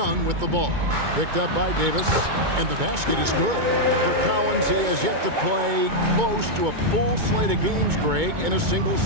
with the ball, picked up by Davis, and the basket is good. For Collins, he has yet to play close to a full slate of games, Greg, in a single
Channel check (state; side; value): late; left; 2.2 ms